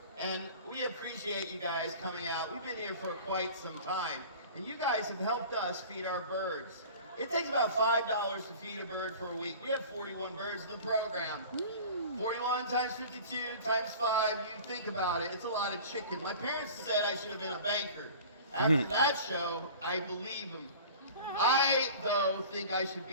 and we appreciate you guys coming out. We've been here for quite some time, and you guys have helped us feed our birds. It takes about $5 to feed a bird for a week. We have 41 birds in the program. 41 times 52 times 5, you think about it, it's a lot of chicken. My parents said I should have been a banker. After that show, I believe them. I, though, think I should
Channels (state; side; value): inverted; both; correlation -0.41